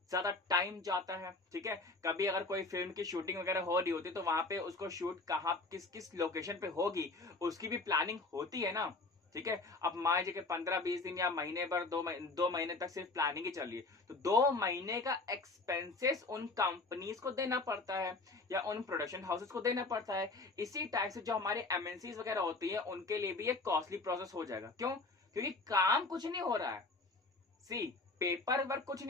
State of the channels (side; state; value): right; quieter; 3.4 dB